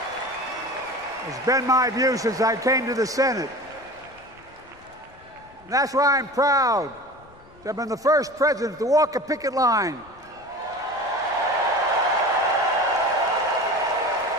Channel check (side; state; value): left; noise; rumble, 26 dB below the sound